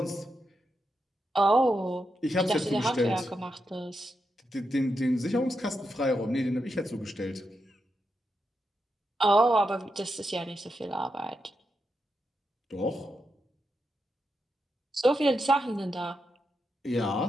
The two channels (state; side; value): normal; both; correlation 0.85